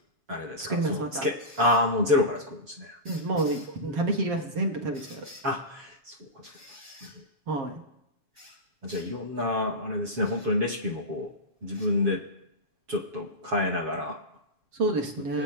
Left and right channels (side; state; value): left; late; 7.1 ms